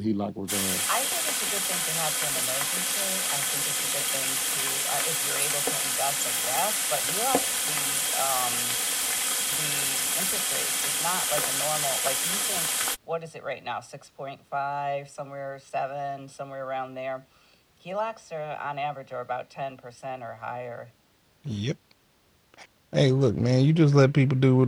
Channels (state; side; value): identical; both; correlation 1.00